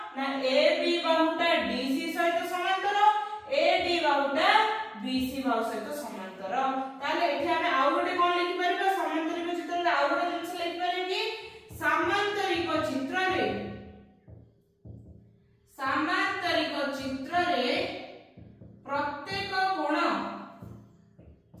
ना ए बी बाहुटा डीसी सहित समांतर ए डी बाहुटा बीसी बाहु सहित समांतर। ताले एठी आमे आउ गोटे कोन लिखि परिबा समांतरिक चित्र रे आउ गोटे जिंस लिखि परिबी समांतरिक चित्र रे प्रत्येक कोण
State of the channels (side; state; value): both; identical; correlation 1.00